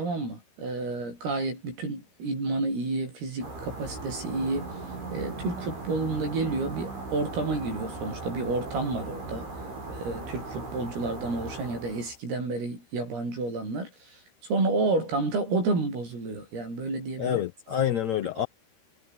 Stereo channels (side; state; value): left; late; 13 ms